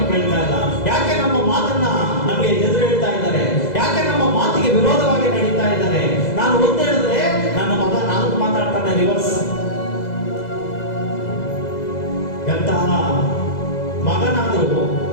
ಕೇಳ್ತಾ ಇಲ್ಲ? ಯಾಕೆ ನಮ್ಮ ಮಾತನ್ನ ನಮಗೆ ಎದುರು ಹೇಳ್ತಾ ಇದ್ದಾರೆ? ಯಾಕೆ ನಮ್ಮ ಮಾತಿಗೆ ವಿರೋಧವಾಗಿ ನಡೀತಾ ಇದ್ದಾರೆ? ನಾನು ಒಂದು ಹೇಳಿದ್ರೆ ನನ್ನ ಮಗ 4 ಮಾತಾಡ್ತಾನೆ ರಿವರ್ಸ್. ಎಂತಹ ಮಗನಾದರೂ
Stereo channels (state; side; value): late; right; 2.0 ms